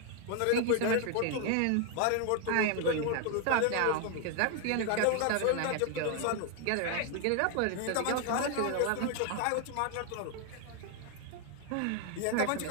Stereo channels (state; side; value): different; both; correlation 0.00